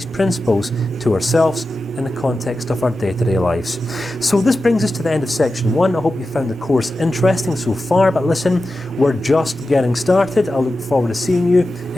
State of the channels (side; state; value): both; normal; correlation 0.92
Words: principles to ourselves in the context of our day-to-day lives. So this brings us to the end of section 1. I hope you found the course interesting so far, but listen, we're just getting started. I look forward to seeing you